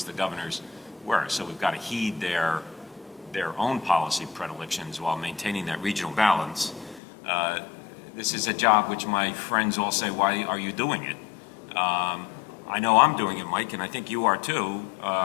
The governors were. So we've got to heed their their own policy predilections while maintaining that regional balance. This is a job which my friends all say, why are you doing it? I know I'm doing it, Mike, and I think you are too,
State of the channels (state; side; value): drops out; right; at 7.0 s